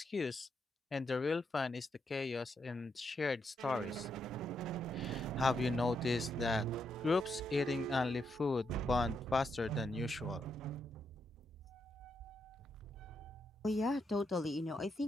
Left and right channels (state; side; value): normal; both; correlation 0.80